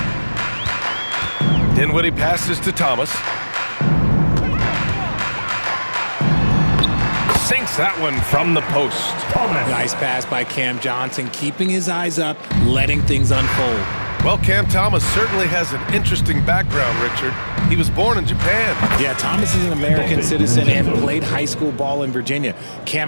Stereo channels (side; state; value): both; inverted; correlation -1.00